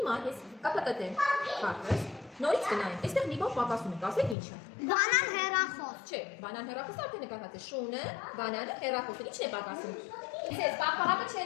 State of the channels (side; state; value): right; drops out; at 4.4 s